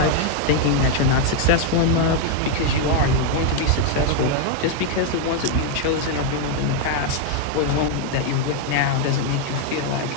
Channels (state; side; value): different; both; correlation 0.01